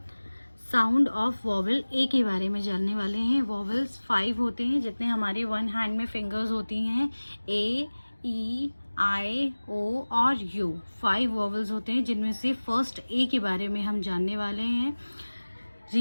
साउंड ऑफ वॉवल ए के बारे में जानने वाले हैं। वॉवल्स 5 होते हैं, जितने हमारे वन हैंड में फिंगर्स होती हैं। ए, ई, आई, ओ और यू 5 वॉवल्स होते हैं, जिनमें से फर्स्ट ए के बारे में हम जानने वाले हैं।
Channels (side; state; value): both; inverted; correlation -1.00